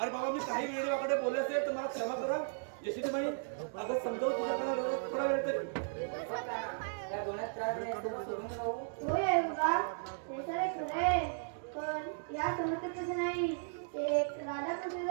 बाबा मी काही वेळ देवाकडे बोलले असेल तर मला क्षमा करा. यशोदी बाई अगं समजावून तुझ्याकडे थोडा वेळ तरी या दोन्यात त्रास नाही असतो सोडून राहू. होय आहे बाबा, हे सारे खरं आहे. पण या समस्येत तसं नाही. एक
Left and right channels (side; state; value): left; silent; digital silence